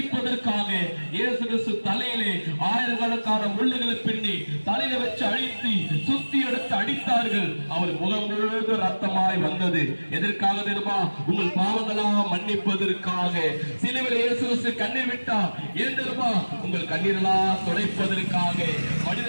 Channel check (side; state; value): both; inverted; correlation -1.00